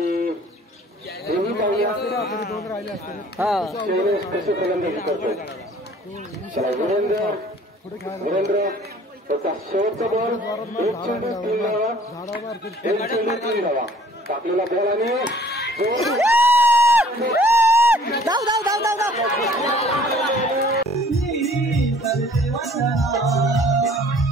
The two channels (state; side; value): normal; both; correlation 0.54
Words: हेही पाहूया शैलेश कशी गोलंदाजी करतो. चला वीरेंद्र त्याचा शेवटचा बॉल. 1 चेंडू 3 धावा. 1 चेंडू 3 धावा. टाकलेला बॉल आणि